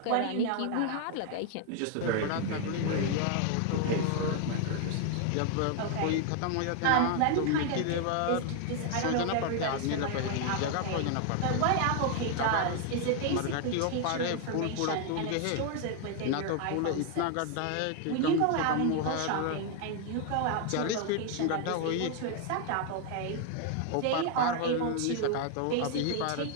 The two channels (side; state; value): both; different; correlation 0.00